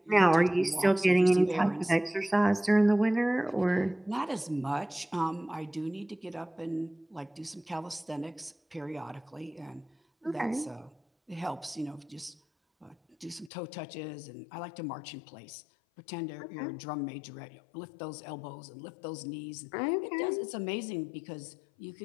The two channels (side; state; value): right; drops out; at 13.5 s